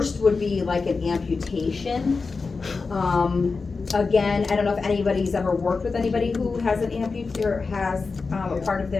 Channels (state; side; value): quieter; right; 4.4 dB